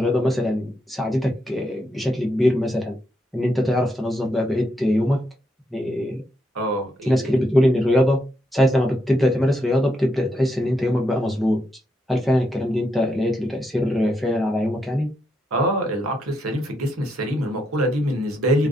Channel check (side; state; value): both; normal; correlation 0.80